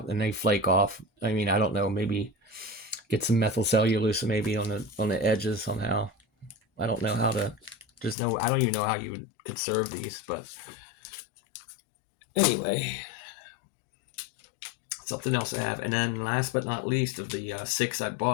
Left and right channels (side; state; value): right; drops out; at 8.2 s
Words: and they flake off. I mean, I don't know. Maybe get some methyl cellulose maybe on the edges somehow. I don't know how to. I don't even know how you would conserve these, but anyway, something else I have. And then last but not least of the 6 I